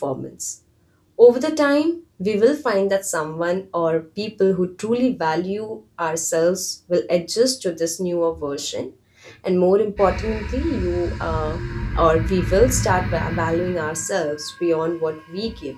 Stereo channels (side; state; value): both; identical; correlation 1.00